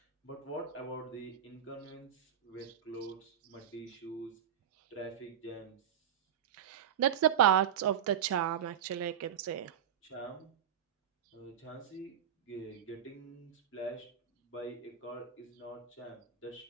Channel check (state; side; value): quieter; left; 9.0 dB